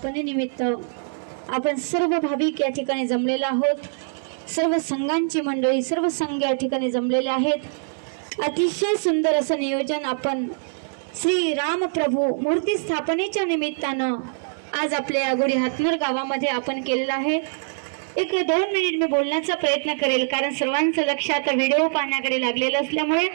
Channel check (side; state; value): left; silent; digital silence